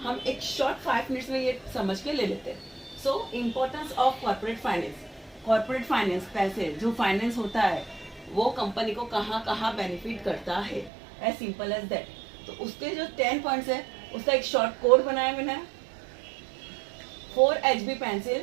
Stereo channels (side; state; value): left; drops out; at 10.9 s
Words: हम एक शॉर्ट 5 मिनट्स में ये समझ के ले लेते हैं। So importance of corporate finance. Corporate finance, पैसे जो फाइनेंस होता है वो कंपनी को कहाँ कहाँ बेनिफिट करता है, एज सिंपल एज दैट। तो उसके जो 10 पॉइंट्स है उसका एक शॉर्ट कोड बनाया मैंने। 4 HB